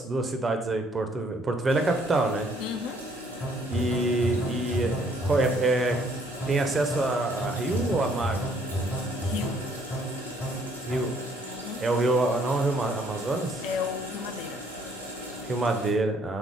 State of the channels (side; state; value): both; normal; correlation 0.64